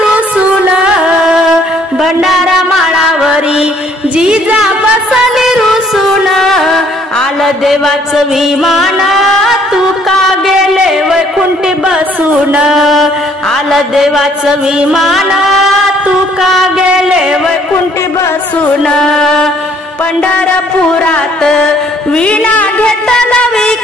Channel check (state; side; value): normal; both; correlation 0.62